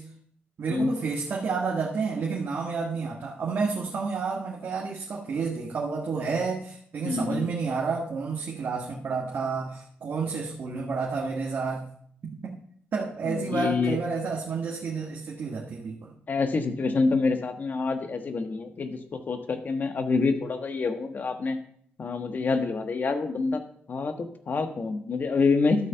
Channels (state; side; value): normal; both; correlation 0.79